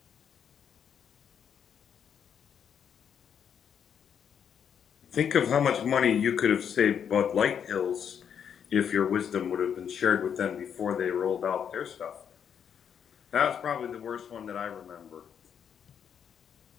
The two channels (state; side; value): quieter; right; 8.0 dB